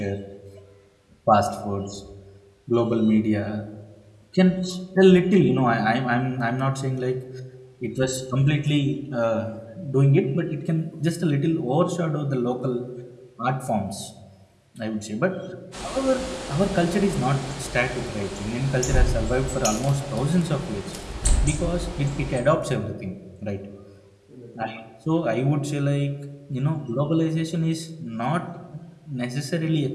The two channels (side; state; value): both; identical; correlation 1.00